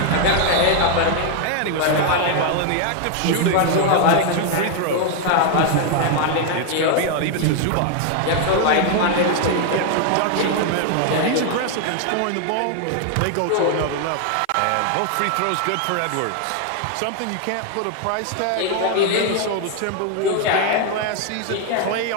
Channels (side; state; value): both; different; correlation 0.00